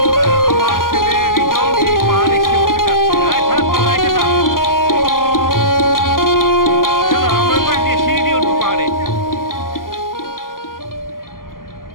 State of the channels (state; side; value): late; right; 0.91 ms